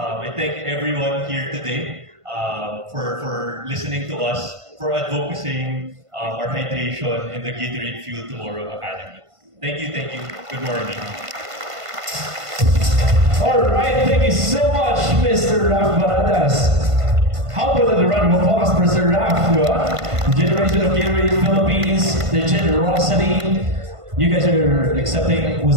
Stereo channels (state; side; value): late; left; 1.5 ms